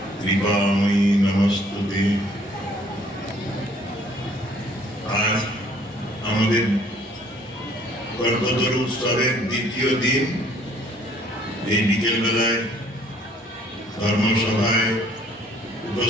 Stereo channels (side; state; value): both; normal; correlation 0.59